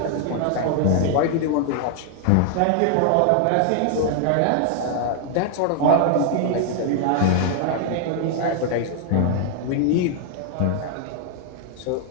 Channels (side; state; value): both; different; correlation 0.00